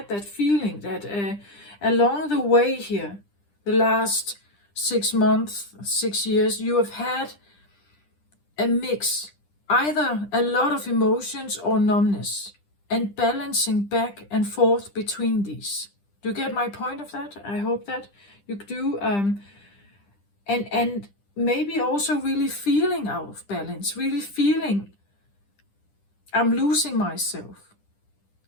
that feeling that along the way here, the last 6 months, 6 years, you have had a mix either a lot of emotions or numbness, and balancing back and forth between these. Do you get my point of that? I hope that you do. And maybe also really feeling out of balance, really feeling I'm losing myself.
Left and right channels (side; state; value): right; late; 10 ms